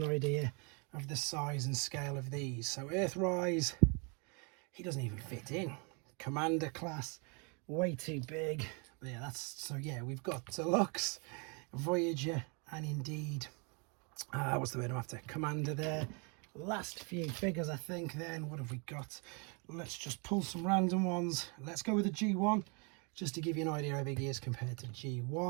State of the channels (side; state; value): left; quieter; 34.1 dB